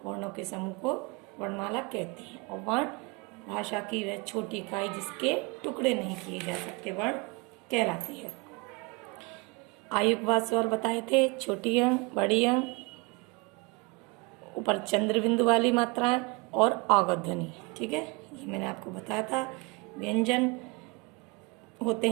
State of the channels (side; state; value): left; quieter; 27.4 dB